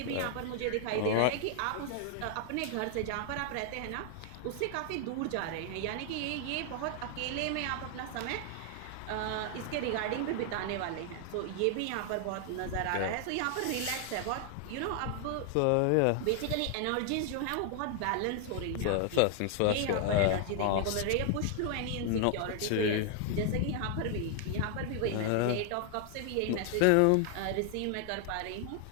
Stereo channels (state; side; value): different; both; correlation 0.00